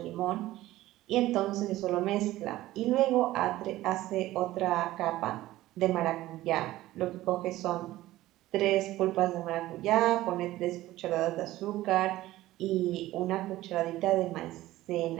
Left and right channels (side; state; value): left; quieter; 16.1 dB